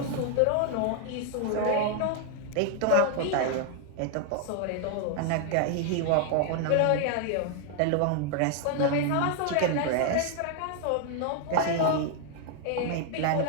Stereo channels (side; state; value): both; different; correlation 0.00